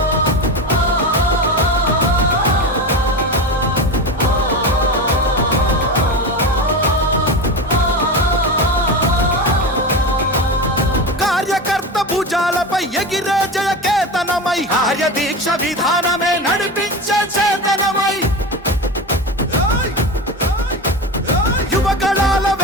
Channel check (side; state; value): both; normal; correlation 0.24